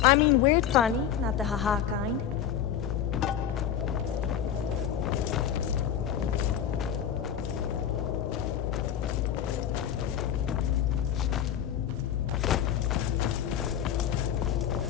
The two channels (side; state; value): right; quieter; 9.5 dB